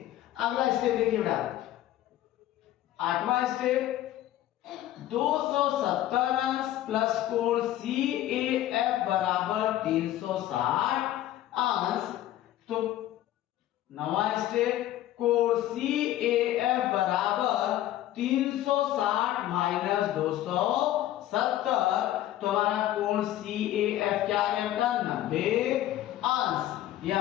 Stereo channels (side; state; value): right; quieter; 13.5 dB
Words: अगला स्टेप देखिए बेटा, आठवां स्टेप 270 अंश प्लस कोण CAF बराबर 360 अंश। तो नवा स्टेप कोण CAF बराबर 360 माइनस 270। तो हमारा कोण CAF क्या आ गया बेटा? 90 अंश। ये